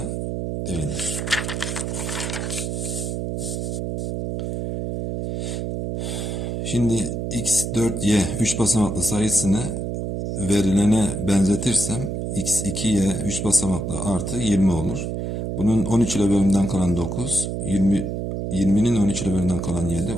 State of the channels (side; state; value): right; noise; hum, 3 dB below the sound